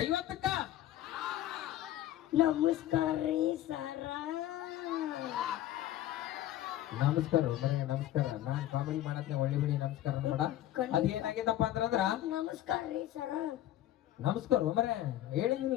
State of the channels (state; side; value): quieter; right; 13.3 dB